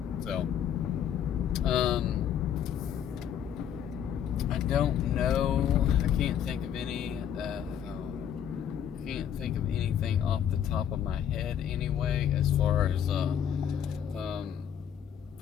So, I don't know. I can't think of any. can't think of anything off the top of my head anyway, as far as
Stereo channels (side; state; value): right; quieter; 9.1 dB